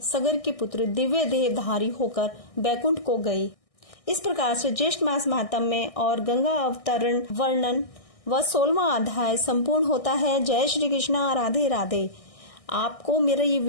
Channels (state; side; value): late; right; 1.6 ms